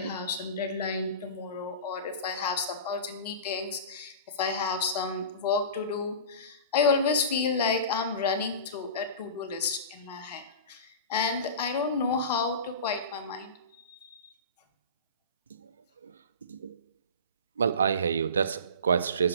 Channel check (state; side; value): inverted; both; correlation -0.32